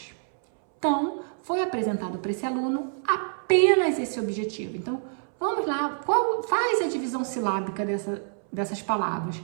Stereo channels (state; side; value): silent; left; 60 dB below the other